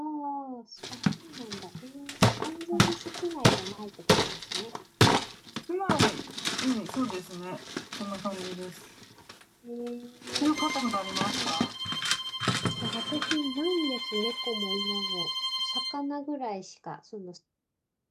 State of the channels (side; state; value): both; identical; correlation 1.00